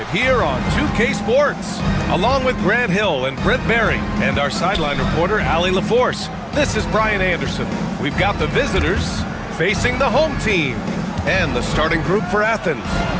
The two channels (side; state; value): both; identical; correlation 1.00